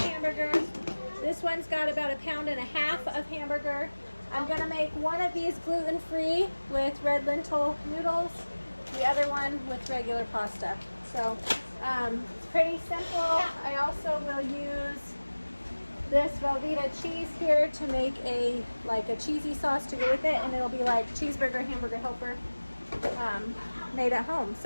This one's got about 1.5 pounds of hamburger. I'm gonna make one of these gluten-free with red lentil noodles, the other one with regular pasta. So it's pretty simple. I also will use this Velveeta cheese here to make a cheesy sauce to go with it, and it'll be like cheeseburger hamburger helper made at home.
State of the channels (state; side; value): inverted; both; correlation -1.00